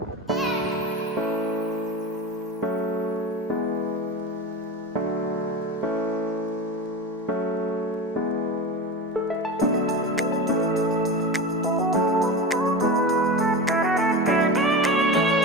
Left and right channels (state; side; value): normal; both; correlation 0.26